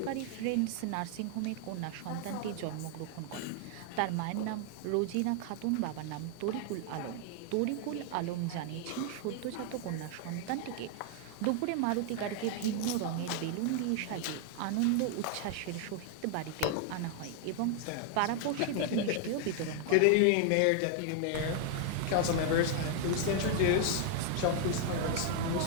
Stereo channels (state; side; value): different; both; correlation 0.00